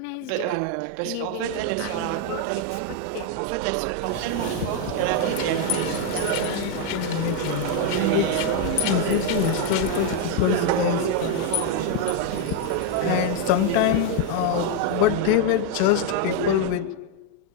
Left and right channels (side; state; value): both; different; correlation 0.01